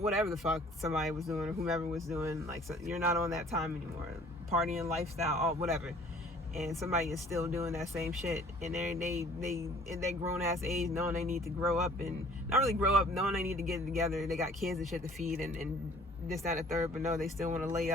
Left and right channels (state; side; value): normal; both; correlation 0.53